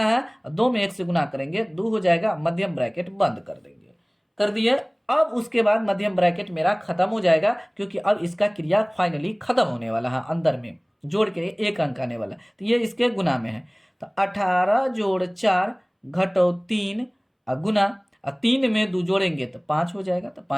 2 में 1 से गुना करेंगे, 2 हो जाएगा, मध्यम ब्रैकेट बंद कर देंगे। कर दिए। अब उसके बाद मध्यम ब्रैकेट मेरा खत्म हो जाएगा, क्योंकि अब इसका क्रिया फाइनली खत्म होने वाला है, अंदर में जोड़ के 1 अंक आने वाला, तो ये इसके गुना में है। तो 18 जोड़ 4 घटो 3 गुना, 3 में 2 जोड़ेंगे तो 5 हो जाएगा, तो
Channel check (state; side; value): identical; both; correlation 1.00